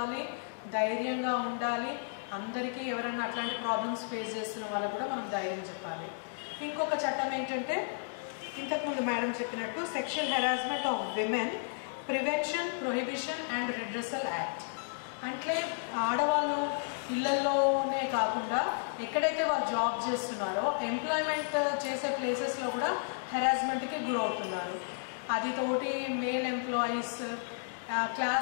ధైర్యంగా ఉండాలి. అందరికీ ఎవరైనా అట్లాంటి ప్రాబ్లమ్స్ ఫేస్ చేస్తున్న వాళ్ళకు కూడా మనం ధైర్యం చెప్పాలి. ఇంకొక చట్టం ఏంటంటే, ఇంతకుముందు మేడం చెప్పినట్టు sexual harassment of women prevention, prohibition and redressal act. అంటే ఆడవాళ్ళు ఇళ్లలోనే కాకుండా ఎక్కడైతే వాళ్ళు జాబ్ చేస్తున్నారో ఎంప్లాయ్మెంట్ చేసే ప్లేసెస్లో కూడా హెరాస్మెంట్కి గురవుతున్నారు. అది తోటి మేల్ ఎంప్లాయీస్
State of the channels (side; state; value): right; silent; digital silence